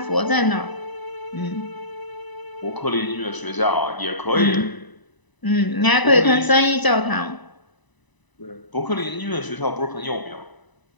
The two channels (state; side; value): late; right; 1.0 ms